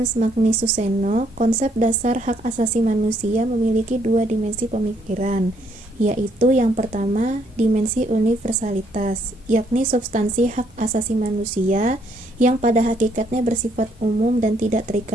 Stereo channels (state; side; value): normal; both; correlation 0.70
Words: Magnus Suseno, konsep dasar hak asasi manusia memiliki dua dimensi pemikiran, yaitu yang pertama, dimensi universalitas, yakni substansi hak asasi manusia yang pada hakikatnya bersifat umum dan tidak